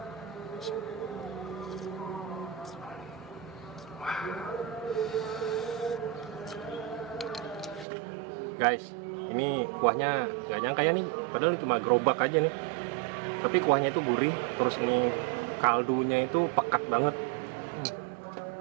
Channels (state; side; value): drops out; left; at 7.9 s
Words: Guys, ini kuahnya gak nyangka ya nih, padahal cuma gerobak aja nih. Tapi kuahnya itu gurih, terus ini kaldunya itu pekat banget.